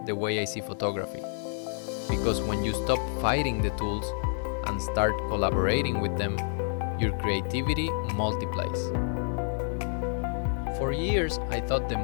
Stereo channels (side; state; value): right; silent; digital silence